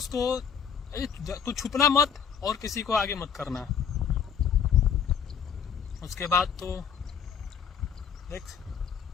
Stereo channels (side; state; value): right; quieter; 7.3 dB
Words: को तू छुपना मत और किसी को आगे मत करना। उसके बाद तो देख